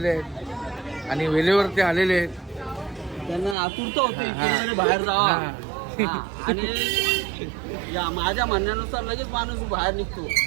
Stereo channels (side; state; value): left; drops out; at 3.6 s